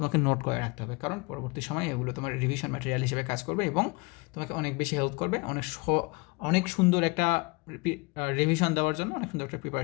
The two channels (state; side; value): quieter; right; 27.9 dB